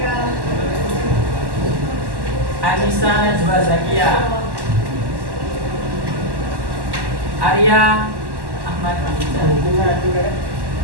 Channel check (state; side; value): late; left; 1.1 ms